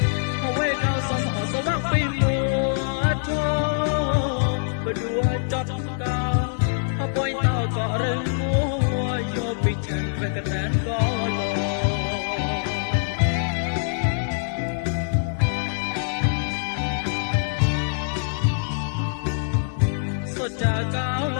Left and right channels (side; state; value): right; silent; digital silence